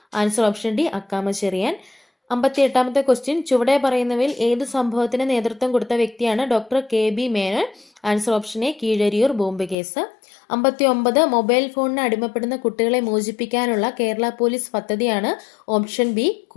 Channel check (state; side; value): drops out; right; at 9.8 s